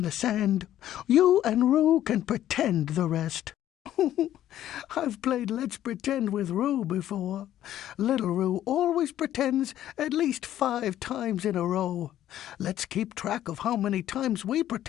the sand, you and Roo can pretend the rest. I've played Let's Pretend with Roo before. Little Roo always pretends at least 5 times in a row. Let's keep track of how many times we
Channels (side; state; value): right; quieter; 12.2 dB